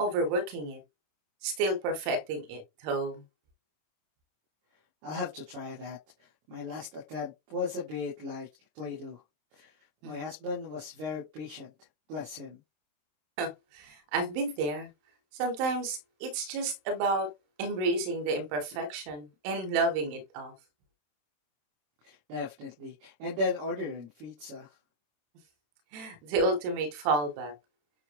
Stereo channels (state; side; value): late; left; 27 ms